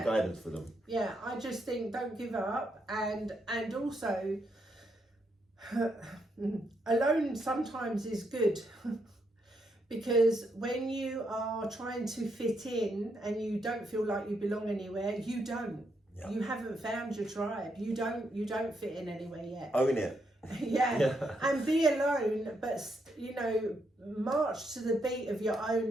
guidance for them? Yeah, I just think don't give up, and also alone sometimes is good. Because when you are trying to fit in and you don't feel like you belong anywhere, you don't. Yeah. You haven't found your tribe. You don't fit in anywhere yet. Own it. Yeah. And be alone, but march to the beat of your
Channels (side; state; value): both; normal; correlation 0.78